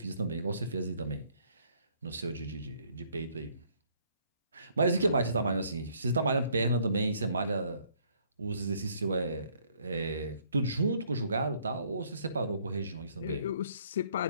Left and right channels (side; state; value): both; inverted; correlation -0.64